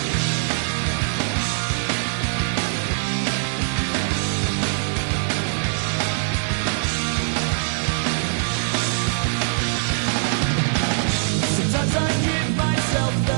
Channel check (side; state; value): left; silent; 64 dB below the other